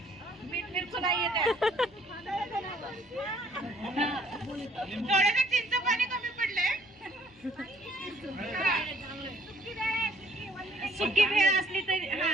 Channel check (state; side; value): noise; left; hum, 27 dB below the sound